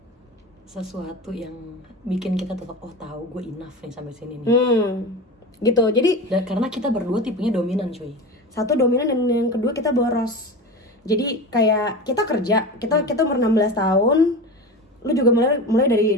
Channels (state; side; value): normal; both; correlation 0.28